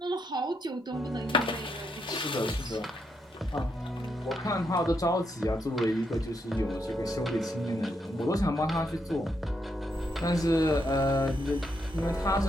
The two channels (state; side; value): normal; both; correlation 0.79